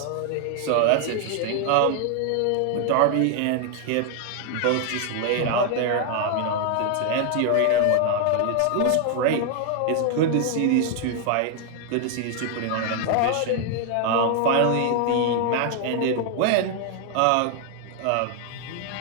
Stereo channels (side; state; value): both; different; correlation 0.00